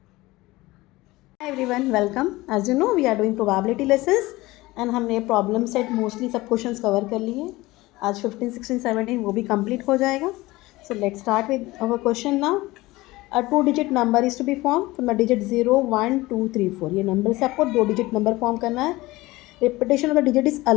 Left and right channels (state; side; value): quieter; right; 19.7 dB